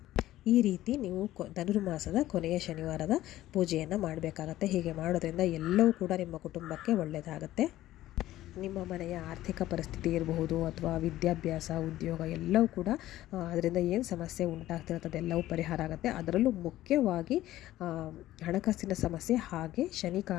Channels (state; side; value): quieter; right; 14.8 dB